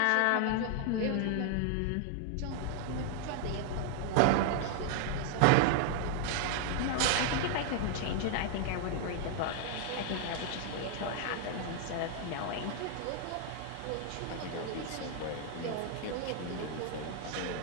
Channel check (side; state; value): both; different; correlation 0.00